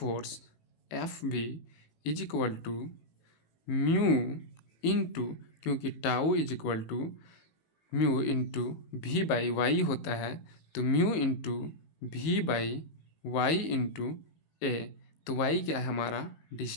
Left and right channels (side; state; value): right; late; 18 ms